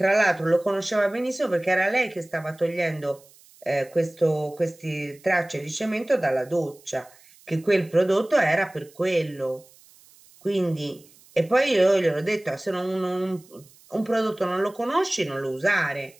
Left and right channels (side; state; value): right; noise; hiss, 27 dB below the sound